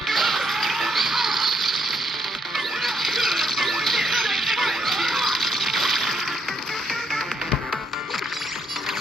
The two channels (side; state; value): both; normal; correlation 0.74